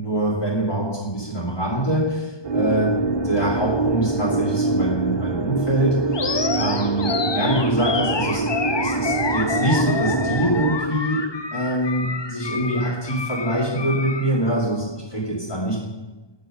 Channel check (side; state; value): right; late; 1.2 ms